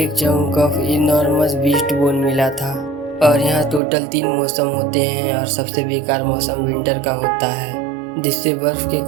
chunk of enormous beast bone मिला था। और यहाँ टोटल 3 मौसम होते हैं और सबसे बेकार मौसम विंटर का होता है, जिससे बर्फ के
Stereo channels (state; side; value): drops out; left; at 3.8 s